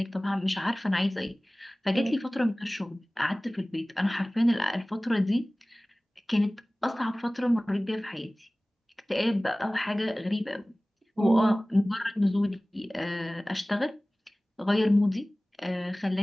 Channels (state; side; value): normal; both; correlation 0.98